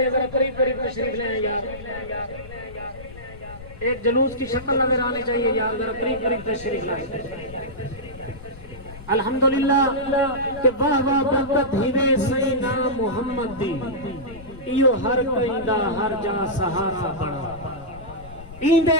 ذرا قریب قریب تشریف لیں یار، ایک جلوس کی شکل نظر آنی چاہیے یار، ذرا قریب قریب تشریف لائیں۔ الحمدللہ کہ واہ واہ برکت ہیوے سینا محمد دی، ایو ہر کئیندہ ہر جا سہارا بڑا،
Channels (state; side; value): noise; left; rumble, 16 dB below the sound